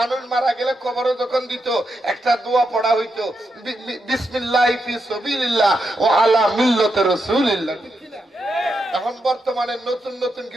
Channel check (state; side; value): normal; both; correlation 0.84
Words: মারা গেলে কবরে যখন দিত একটা দোয়া পড়া হইতো বিসমিল্লাহি ফি সাবিলিল্লাহ ওয়া আলা মিল্লাতি রাসূলিল্লাহ এখন বর্তমানে নতুন নতুন